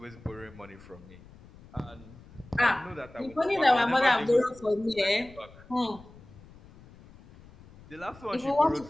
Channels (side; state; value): left; noise; rumble, 22 dB below the sound